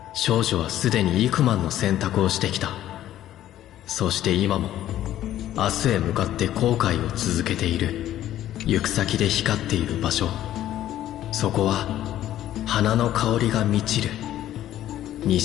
少女はすでに幾万の選択をしてきた。そして今も明日へ向かって後悔を続けている。行く先で光っている場所、そこは花の香りが満ちる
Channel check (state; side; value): quieter; right; 12.7 dB